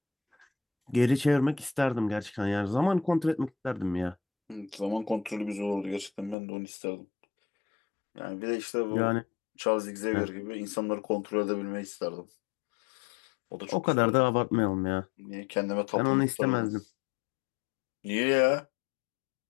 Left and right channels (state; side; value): drops out; right; at 6.4 s